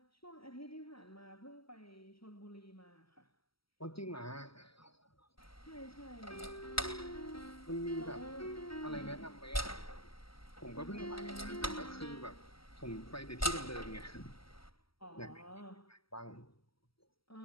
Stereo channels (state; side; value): late; right; 0.75 ms